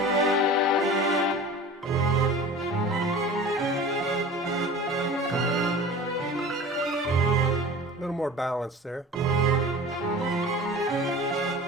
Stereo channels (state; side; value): normal; both; correlation 0.38